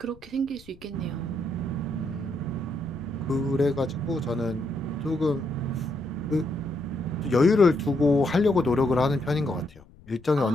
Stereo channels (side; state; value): left; noise; rumble, 24 dB below the sound